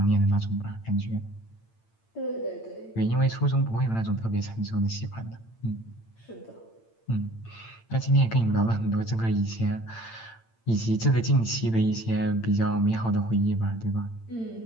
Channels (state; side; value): late; right; 8.8 ms